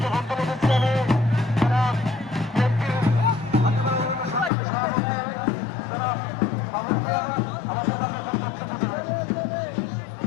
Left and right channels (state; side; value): drops out; right; at 4.5 s